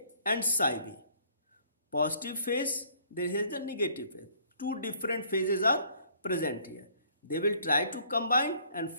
and psi B. Positive phase, there is the negative phase. Two different phases are present here. They will try to combine and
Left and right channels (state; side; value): inverted; both; correlation -0.60